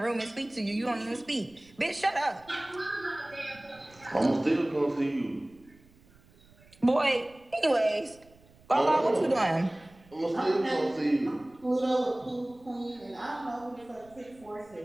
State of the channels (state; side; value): noise; right; rumble, 27 dB below the sound